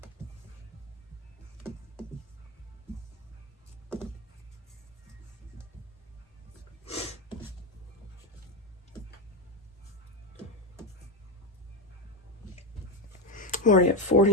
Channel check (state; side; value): normal; both; correlation 0.13